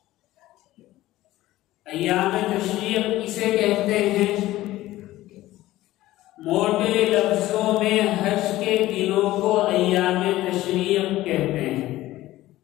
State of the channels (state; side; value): quieter; right; 16.1 dB